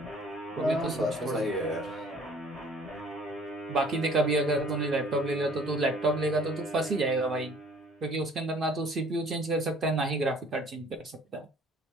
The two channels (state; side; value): normal; both; correlation 0.54